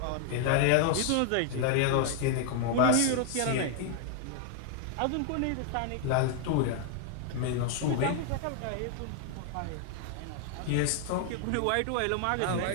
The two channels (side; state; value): both; different; correlation 0.00